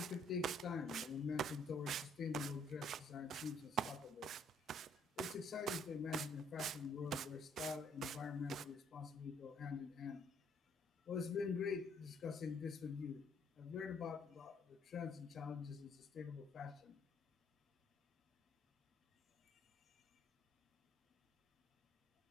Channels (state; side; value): normal; both; correlation 0.66